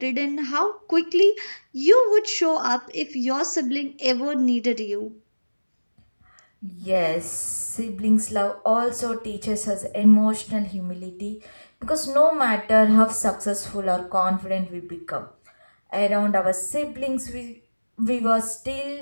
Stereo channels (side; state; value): both; inverted; correlation -1.00